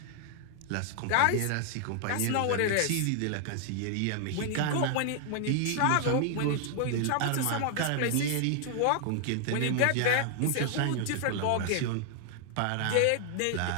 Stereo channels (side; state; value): both; different; correlation 0.00